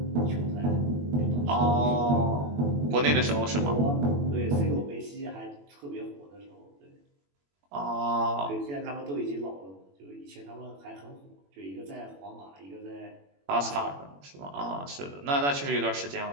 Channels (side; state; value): left; late; 21 ms